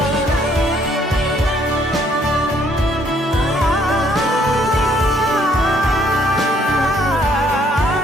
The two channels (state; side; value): normal; both; correlation 0.65